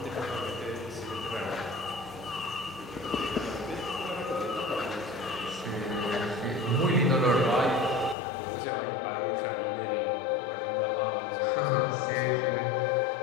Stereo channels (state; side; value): drops out; right; at 8.2 s